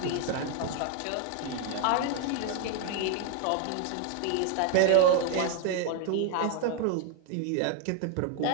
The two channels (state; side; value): different; both; correlation 0.00